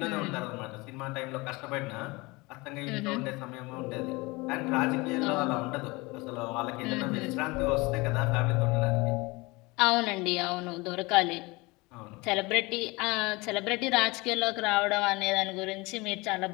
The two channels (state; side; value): quieter; right; 24.1 dB